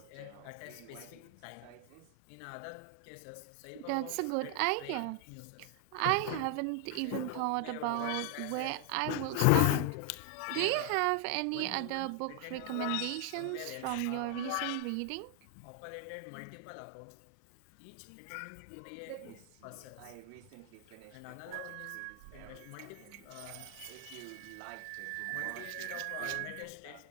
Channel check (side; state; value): both; different; correlation 0.00